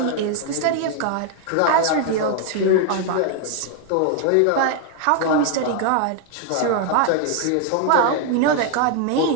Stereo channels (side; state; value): both; different; correlation 0.00